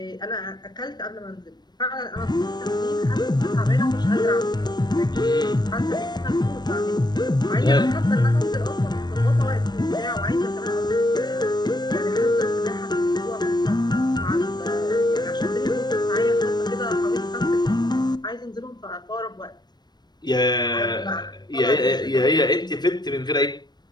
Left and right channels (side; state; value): right; late; 0.20 ms